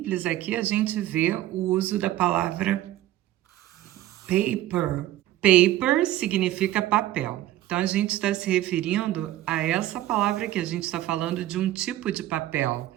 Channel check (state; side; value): quieter; left; 14.3 dB